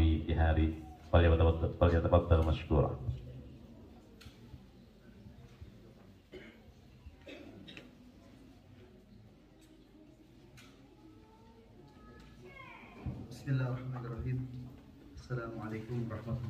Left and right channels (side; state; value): both; identical; correlation 1.00